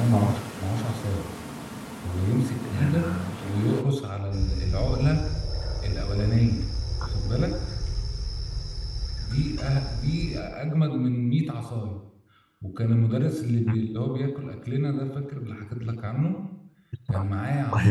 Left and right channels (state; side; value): identical; both; correlation 1.00